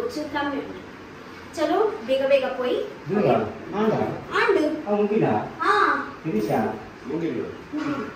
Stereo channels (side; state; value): both; identical; correlation 1.00